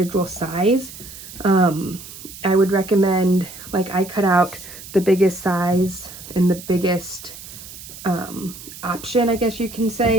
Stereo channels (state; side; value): noise; right; hiss, 15 dB below the sound